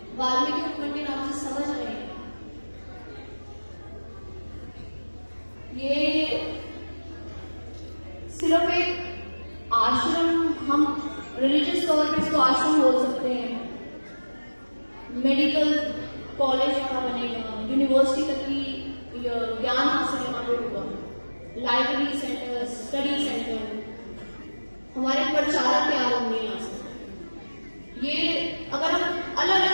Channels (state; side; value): inverted; both; correlation -1.00